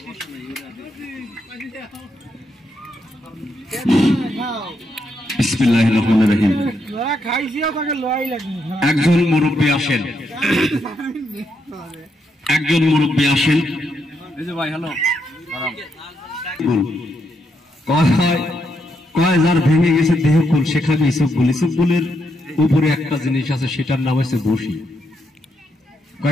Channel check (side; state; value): both; normal; correlation 0.79